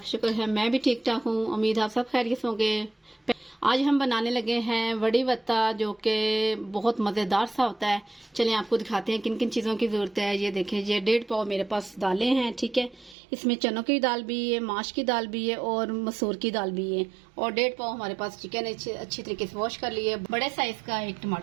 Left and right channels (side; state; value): left; drops out; at 13.2 s